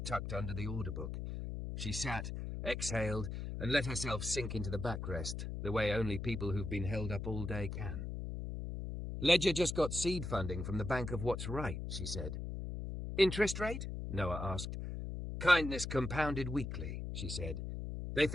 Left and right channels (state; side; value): noise; left; hum, 5 dB below the sound